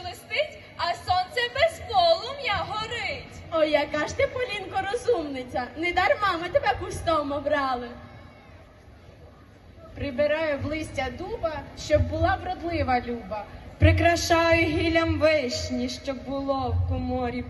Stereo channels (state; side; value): identical; both; correlation 1.00